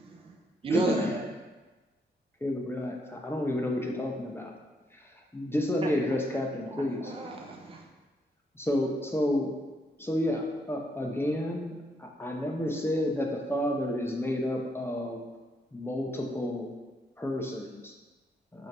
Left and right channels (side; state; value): both; normal; correlation 0.76